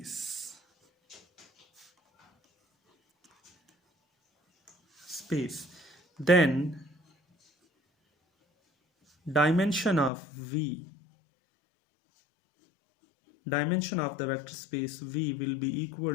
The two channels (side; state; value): right; drops out; at 10.1 s